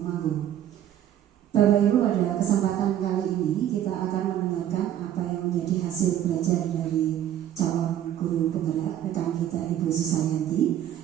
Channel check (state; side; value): quieter; left; 11.2 dB